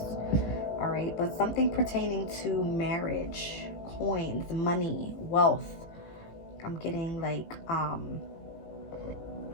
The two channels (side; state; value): right; late; 18 ms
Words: All right, but something pertaining to marriage, coins, money, wealth. I'm getting like